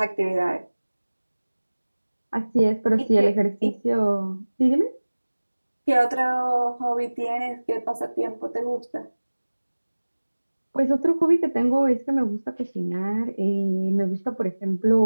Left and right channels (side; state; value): both; inverted; correlation -1.00